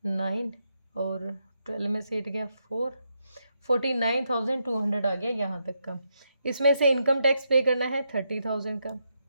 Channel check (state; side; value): inverted; both; correlation -0.81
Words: 9 और 12 में से 8 गया 4, 49,200 आ गया यहाँ तक का। इसमें से इनकम टैक्स पे करना है 30,000 का,